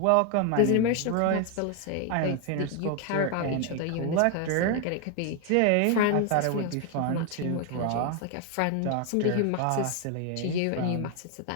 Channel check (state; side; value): different; both; correlation 0.01